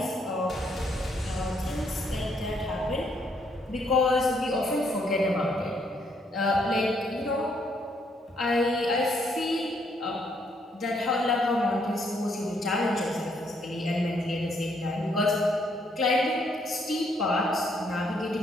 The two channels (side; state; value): both; normal; correlation 0.71